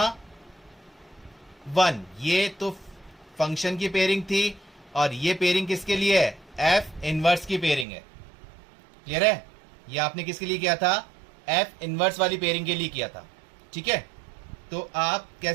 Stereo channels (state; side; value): drops out; left; at 7.9 s